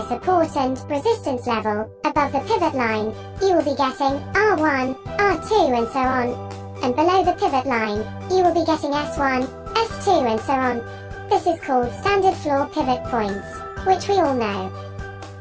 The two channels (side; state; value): both; identical; correlation 1.00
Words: support and resistance level. Above the pivot line, you will be getting R1, R2 and so on. And below the pivot line, you will be getting S1, S2 and so on. This is called standard floor pivot points, which we all know.